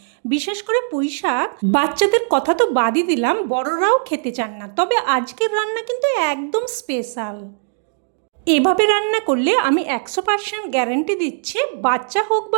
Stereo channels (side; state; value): left; silent; digital silence